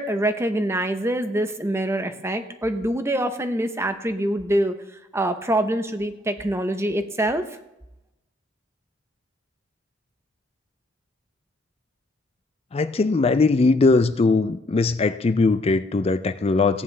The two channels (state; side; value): normal; both; correlation 0.68